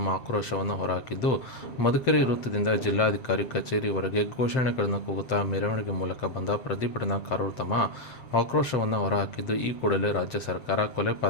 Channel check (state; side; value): late; right; 7.7 ms